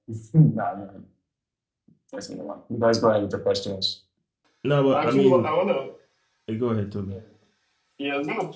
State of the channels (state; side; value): identical; both; correlation 1.00